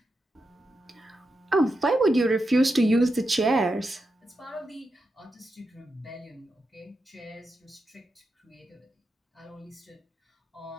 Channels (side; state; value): both; normal; correlation 0.87